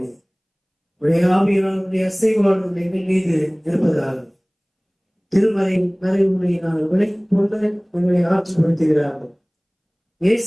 உடைய ஆவியானுடைய அசைவாளர் எங்கள் மீது இருப்பதாக திருமறை மறைவுரை நாங்கள் விலகிக் கொண்டு உங்களை ஆட்சிப்படுத்துகிறார்கள்.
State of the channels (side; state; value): both; identical; correlation 1.00